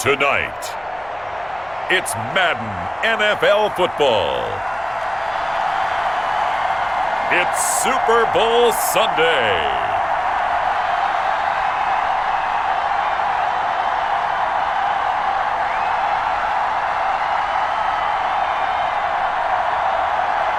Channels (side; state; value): left; noise; hum, 27 dB below the sound